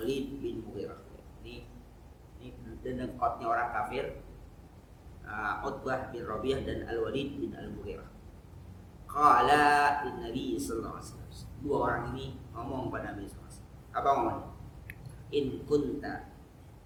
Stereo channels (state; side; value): identical; both; correlation 1.00